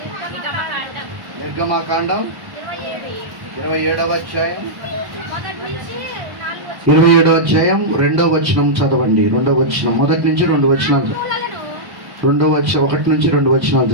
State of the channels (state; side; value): late; left; 1.1 ms